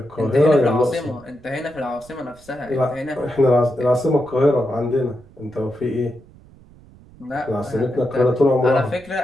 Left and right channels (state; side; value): noise; right; rumble, 24 dB below the sound